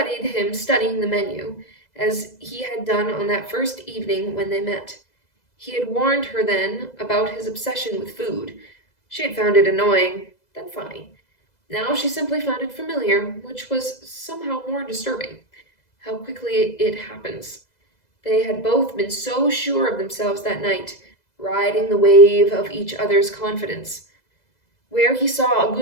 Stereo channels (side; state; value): right; late; 2.0 ms